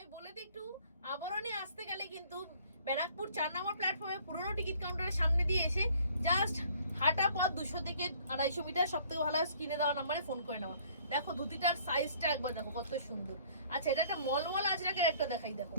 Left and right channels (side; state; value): both; inverted; correlation -0.57